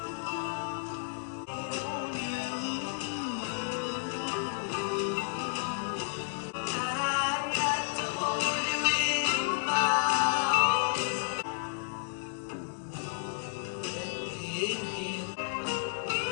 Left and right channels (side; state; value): right; silent; digital silence